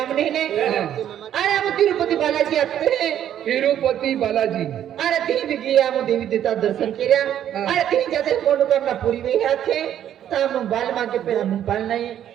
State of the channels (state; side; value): quieter; left; 10.6 dB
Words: हमने ने अरे हम तिरुपति बालाजी आते हैं तिरुपति बालाजी अरे ती भी गया हम देवी देवता दर्शन किया अरे तीन जाते मनोकामना पूरी हुई आते तब हम बाल मां के पे हम बाल नहीं